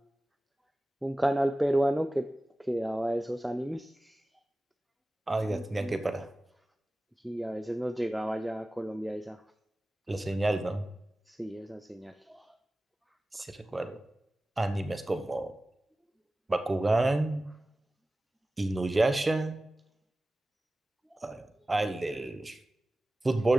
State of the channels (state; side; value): normal; both; correlation 0.96